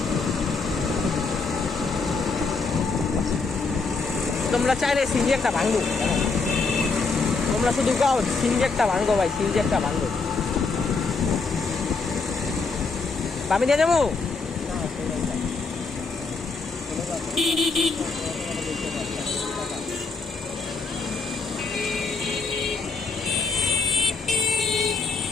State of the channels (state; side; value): quieter; right; 4.3 dB